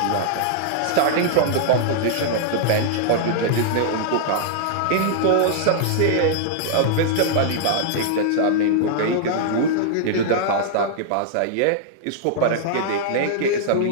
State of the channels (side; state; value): both; different; correlation -0.01